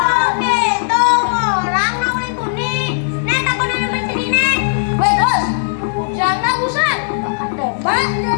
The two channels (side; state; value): right; silent; digital silence